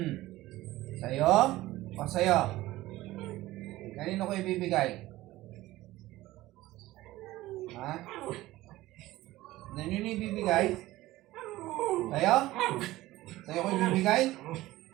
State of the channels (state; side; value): quieter; left; 17.1 dB